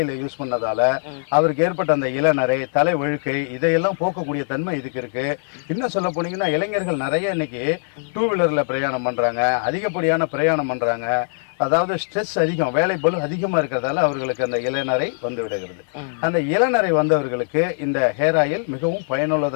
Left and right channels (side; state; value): right; silent; digital silence